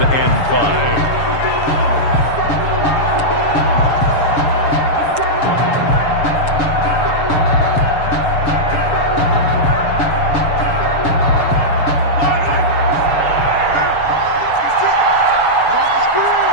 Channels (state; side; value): late; right; 7.0 ms